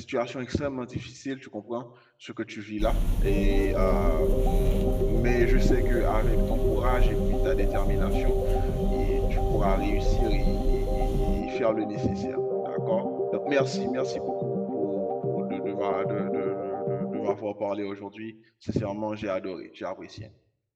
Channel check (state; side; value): identical; both; correlation 1.00